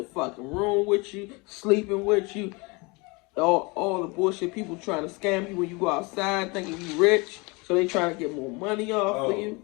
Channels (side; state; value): right; quieter; 27.6 dB